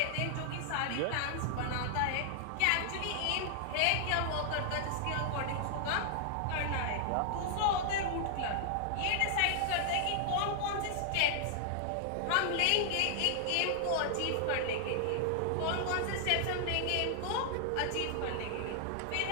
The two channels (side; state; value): both; different; correlation -0.01